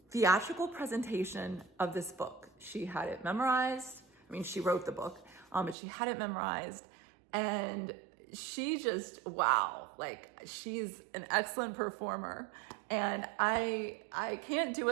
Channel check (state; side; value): drops out; left; at 5.8 s